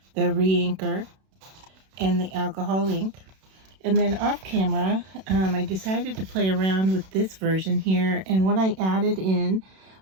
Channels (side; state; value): left; late; 32 ms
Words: the re-inker, and the alcohol ink. And then off camera, I decided to play around with this version here, and what I added in